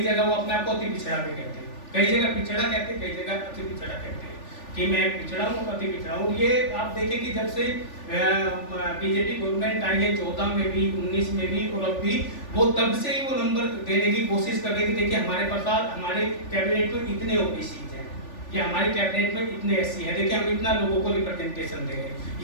जगह वो अपने आप को अति पिछड़ा भी कहते हैं, कई जगह पिछड़ा कहते हैं, कई जगह अति पिछड़ा कहते हैं कि मैं पिछड़ा हूँ, अति पिछड़ा हूँ। ये आप देखें कि जब से बीजेपी गवर्नमेंट आई है 14 में भी, 19 में भी और अब भी, वो तब से ही वो नंबर देने की कोशिश कर रही थी। देखिए हमारे पास हमारे कैबिनेट में इतने ओबीसी हैं, कि हमारी कैबिनेट में इतने एससी हैं, देखिए हम इतना लोगों को रिप्रेजेंटेशन दे रहे हैं,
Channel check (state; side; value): late; right; 3.4 ms